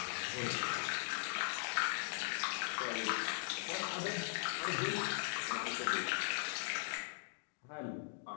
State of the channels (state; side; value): silent; right; digital silence